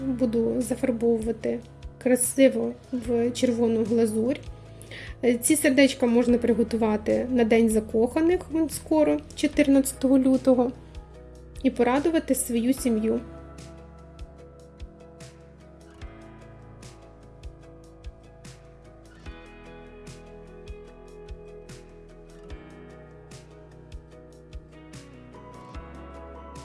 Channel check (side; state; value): both; identical; correlation 1.00